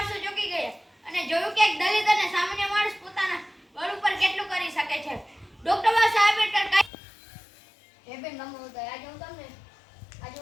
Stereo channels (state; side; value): drops out; right; at 6.9 s